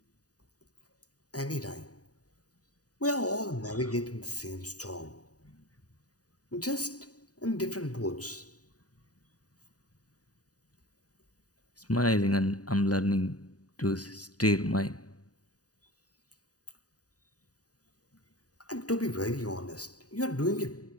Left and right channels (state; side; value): late; right; 0.68 ms